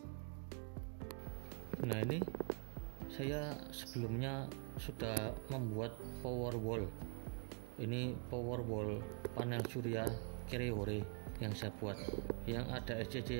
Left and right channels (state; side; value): quieter; left; 38.8 dB